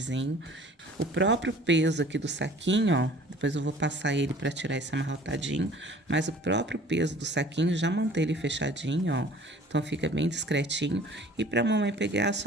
O próprio peso aqui do saquinho, ó, depois eu vou passar ele pra tirar esse amarrotadinho, mas o próprio peso do saquinho já mantém ele fechadinho, ó. Então, fica bem discretinho. E pra mamãe pegar, é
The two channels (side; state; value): both; normal; correlation 0.49